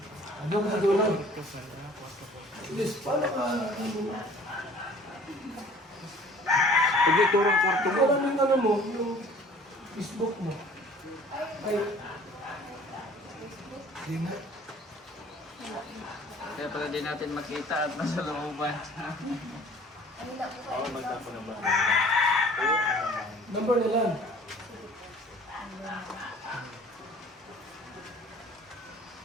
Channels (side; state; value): both; normal; correlation 0.50